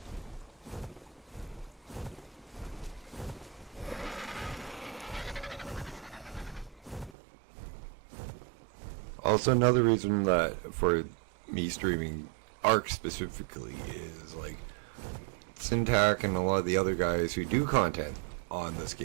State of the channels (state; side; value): drops out; left; at 7.1 s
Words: Also, another reason that for me streaming Ark specifically is like Syntac and a lot of the other guys who do content on this